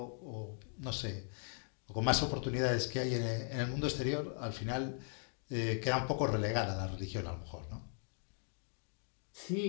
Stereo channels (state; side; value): silent; right; 52 dB below the other